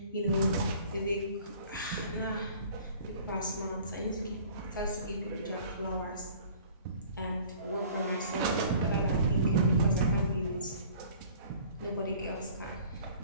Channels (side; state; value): both; inverted; correlation -0.50